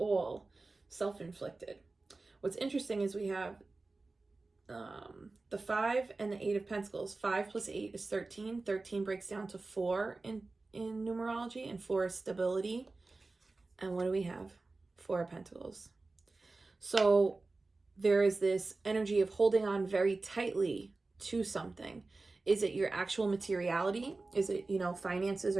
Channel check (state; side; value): quieter; left; 3.5 dB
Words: self-inflicted. What's interesting is we have the 5 and the 8 of Pentacles. 5 plus 8 is 13. 13 breaks down to 4 in numerology, and 4 is stability. And what do we have? 4 of Pentacles. So there is this energy of holding on very tightly to something. Is it your actual materiality? Is it, finances?